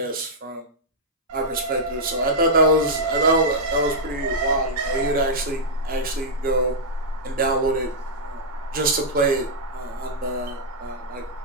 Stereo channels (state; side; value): normal; both; correlation -0.09